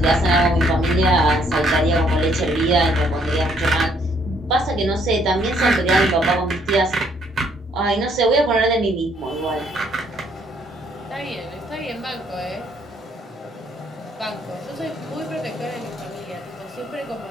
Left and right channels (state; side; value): normal; both; correlation 0.67